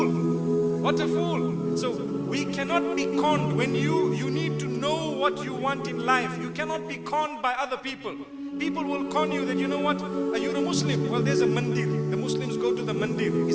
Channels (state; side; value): identical; both; correlation 1.00